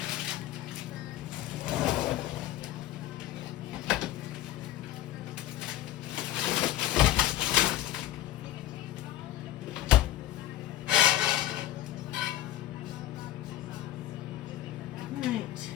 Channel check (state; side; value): quieter; right; 14.1 dB